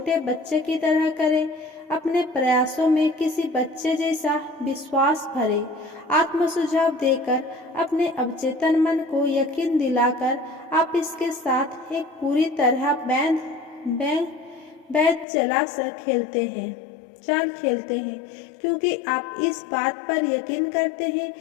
बच्चे की तरह करें। अपने प्रयासों में किसी बच्चे जैसा विश्वास भरे, आत्म सुझाव देकर अपने अवचेतन मन को यकीन दिलाकर आप इसके साथ एक पूरी तरह बैठ चाल खेलते हैं, क्योंकि आप इस बात पर यकीन करते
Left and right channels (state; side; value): drops out; right; at 15.2 s